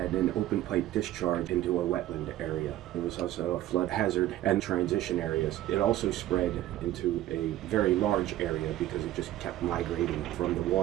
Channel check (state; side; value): quieter; left; 13.9 dB